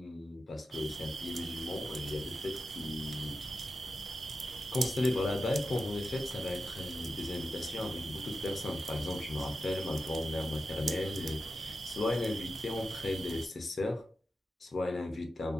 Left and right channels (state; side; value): normal; both; correlation 0.90